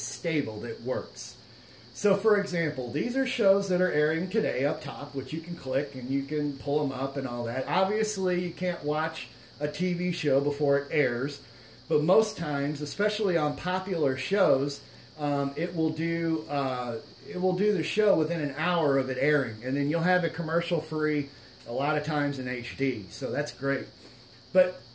stable, that works. So, for example, these are shows that are airing today up top, which you can click and you can pull them up and all that. Obviously, you can't watch a TV show before it airs, but most times, especially on popular shows, it will do the show within an hour of it airing, and then you'll have it commercial free a lot of times in HD. So that's great. But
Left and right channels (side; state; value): both; identical; correlation 1.00